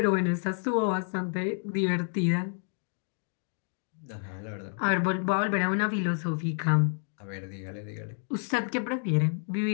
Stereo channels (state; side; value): silent; right; 58 dB below the other